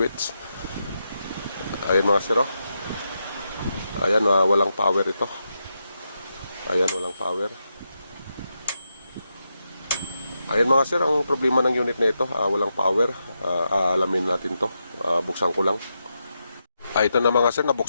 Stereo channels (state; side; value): inverted; both; correlation -0.85